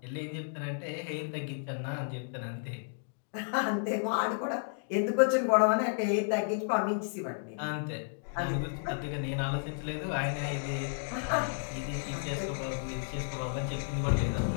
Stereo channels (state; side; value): silent; right; digital silence